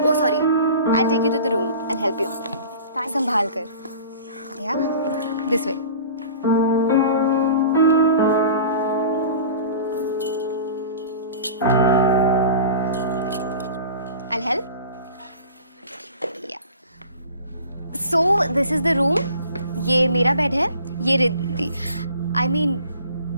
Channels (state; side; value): inverted; both; correlation -0.42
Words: sorry, I take you to the room and help you. संभाल कर। Yeah this way. I'll help. Yeah. So this is the room. ये मेरा बेड है, ये रिद्धि। I mean,